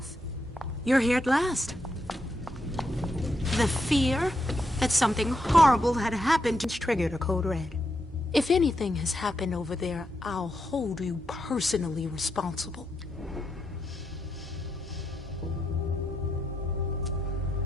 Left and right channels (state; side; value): normal; both; correlation 0.82